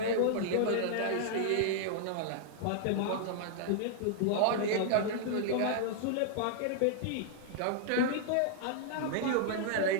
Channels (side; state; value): both; different; correlation -0.01